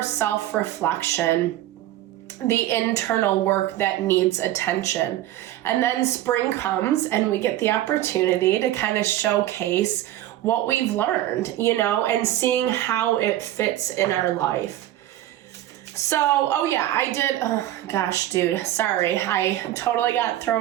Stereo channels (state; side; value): quieter; left; 13.9 dB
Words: self-reflection, the internal work that needs attention. And then spring comes and we get the opportunity to kind of showcase what we've learned, and seeing how it fits in our life. So, I did, gosh, dude, sorry, I totally got